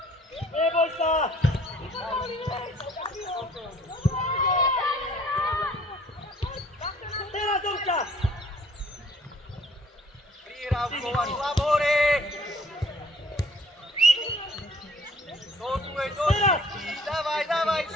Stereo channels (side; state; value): both; normal; correlation 0.57